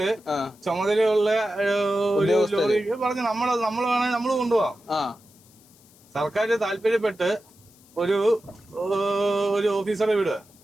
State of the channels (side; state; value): left; noise; hiss, 28 dB below the sound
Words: ചുമതലയുള്ള ഒരു ലോറി പറഞ്ഞ് നമ്മൾ വേണമെങ്കിൽ നമ്മൾ കൊണ്ടുപോവാം. സർക്കാർ താല്പര്യപ്പെട്ട് ഒരു ഓഫീസറെ വിടുക,